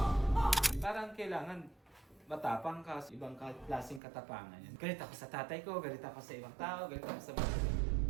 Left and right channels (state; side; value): drops out; left; at 4.0 s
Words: Parang kailangan matapang ka, ibang klaseng katapangan yan. Galit ako sa tatay ko, galit ako sa ibang tao, galit ako sa...